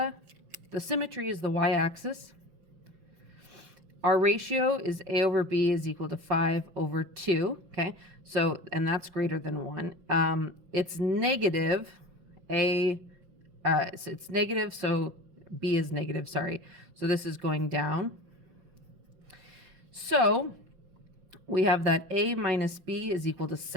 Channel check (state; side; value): late; left; 5.7 ms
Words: the symmetry is the y-axis. Our ratio is A over B is equal to 5 over 2. Okay. So, and that's greater than 1. It's negative. So it's negative, so B is negative, sorry. So this is going down. So we have that A minus B is equal to